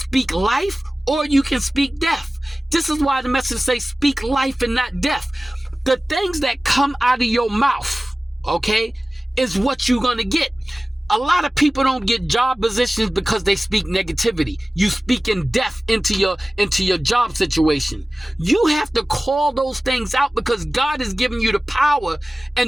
life or you can speak death. This is why the message says speak life and not death. The things that come out of your mouth, okay, is what you're going to get. A lot of people don't get job positions because they speak negativity. You speak in death into your job situation. You have to call those things out because God has given you the power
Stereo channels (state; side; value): normal; both; correlation 0.97